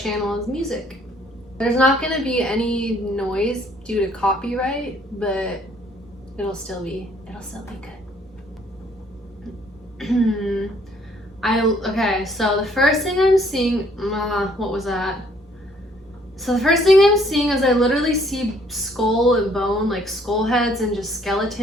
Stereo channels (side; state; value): both; normal; correlation 0.63